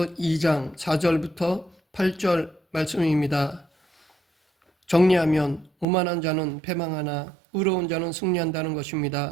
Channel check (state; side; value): drops out; left; at 5.9 s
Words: 2장 4절부터 8절 말씀입니다. 정리하면 오만한 자는 패망하나 의로운 자는 승리한다는